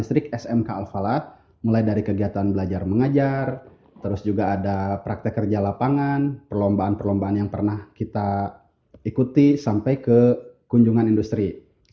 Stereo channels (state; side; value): identical; both; correlation 1.00